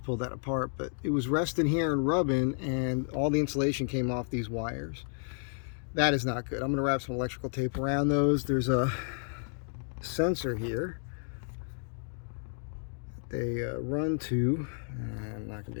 pulled that apart, but it was resting here and rubbing, and all the insulation came off these wires. That is not good. I'm going to wrap some electrical tape around those. There's a sensor here that they run to. I'm not going to be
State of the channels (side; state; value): right; silent; 57 dB below the other